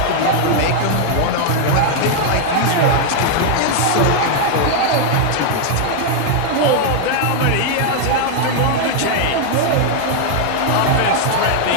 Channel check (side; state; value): both; different; correlation 0.00